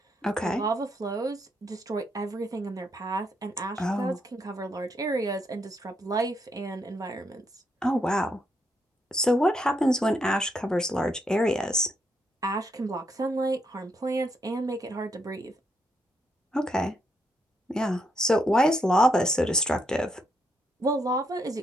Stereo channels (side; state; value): both; normal; correlation 0.77